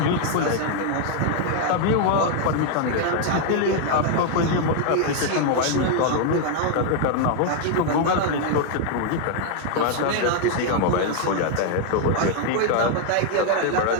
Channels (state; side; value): different; both; correlation 0.00